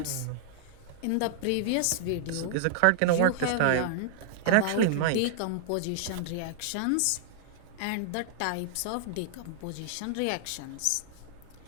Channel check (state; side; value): different; both; correlation -0.01